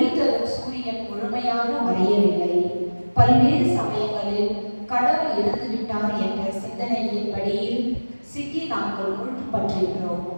தரும் சூரியன் முழுமையாக மறையவில்லை. பல்வேறு சமயங்களில் கடவுள் இறந்துவிட்டார் என்ற சிந்தனையின் படியில் சிக்கி நாங்கள் முழுப்பற்றிருக்கிறோம்.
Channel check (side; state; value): both; inverted; correlation -1.00